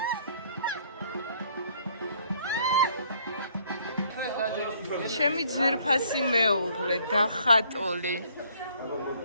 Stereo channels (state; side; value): inverted; both; correlation -0.62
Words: ჩემი ძვირფასი მეუღლე დახატული